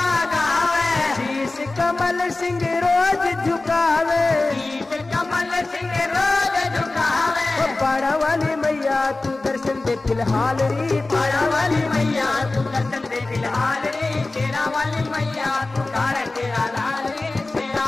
गावे, शीश कमल सिंह रोज झुकावे, शीश कमल सिंह रोज झुकावे, ओ पाड़ा वाली मैया तू दर्शन दे फिलहाल री, पाड़ा वाली मैया तू दर्शन दे फिलहाल रे, शेरा वाली मैया तू कर तेरा लाल रे,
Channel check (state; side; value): quieter; right; 3.2 dB